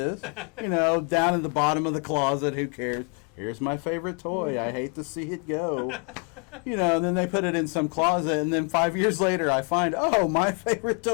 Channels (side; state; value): right; quieter; 35.9 dB